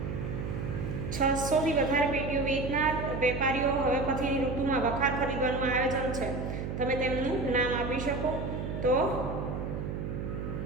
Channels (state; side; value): noise; right; hum, 4 dB below the sound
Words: 600 થી વધારે પેટીઓ વેચનાર વેપારીઓ હવે પછીની ઋતુમાં વખાર ખરીદવાનું આયોજન છે. તમે તેમનું નામ આપી શકો? તો